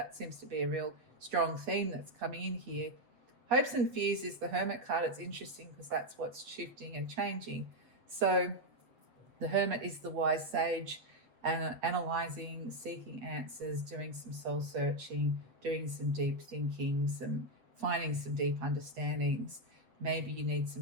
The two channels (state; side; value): late; left; 8.0 ms